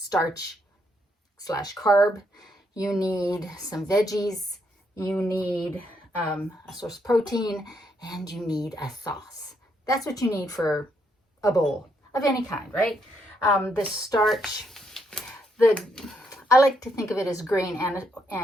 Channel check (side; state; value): both; normal; correlation 0.75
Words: / carb. You need some veggies. you need a source of protein, and you need a sauce. That's what you need for a bowl of any kind, right? The starch, I like to think of it as grain